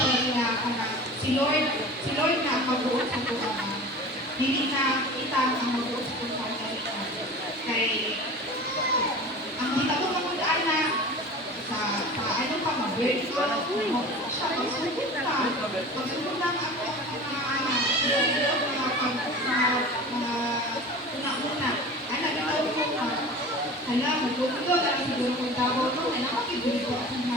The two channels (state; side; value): normal; both; correlation 0.37